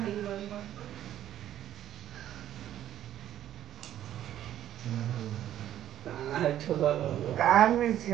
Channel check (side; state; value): left; quieter; 11.7 dB